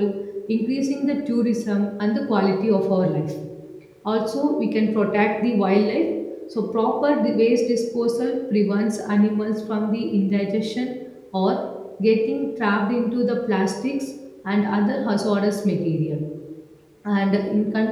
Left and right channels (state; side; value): identical; both; correlation 1.00